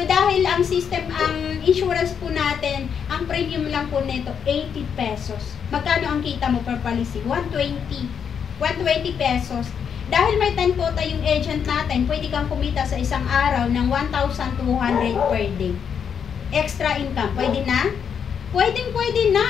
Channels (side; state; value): right; quieter; 7.5 dB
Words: dahil ang system, ang insurance po natin, ang premium lang po nito, 80 pesos. Magkano ang kita mo per policy? 120. 120 pesos. Dahil may 10 quota yung agent natin, pwede kang kumita sa isang araw ng 1,200 per day. Extra income, pwede na? Pwede